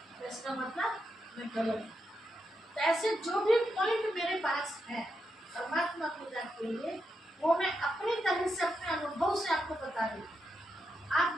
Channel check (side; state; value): both; normal; correlation 0.84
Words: तो इसका मतलब मैं गलत हूँ। तो ऐसे जो भी पॉइंट मेरे पास है परमात्मा पिता के लिए, वो मैं अपनी तरह से अपने अनुभव से आपको बता रही हूँ।